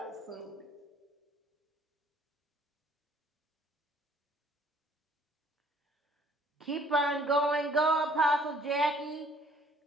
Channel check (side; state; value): both; normal; correlation 0.58